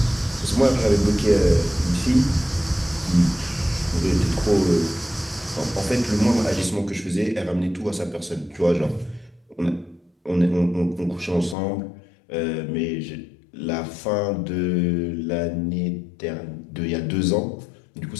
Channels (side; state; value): right; drops out; at 11.6 s